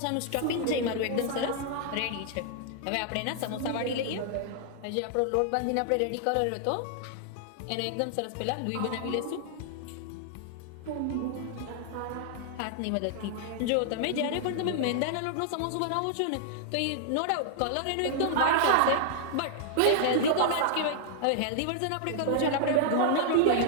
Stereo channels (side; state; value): both; different; correlation -0.01